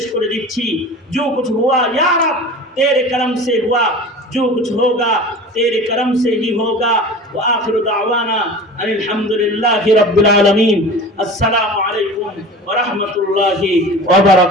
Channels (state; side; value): normal; both; correlation 0.37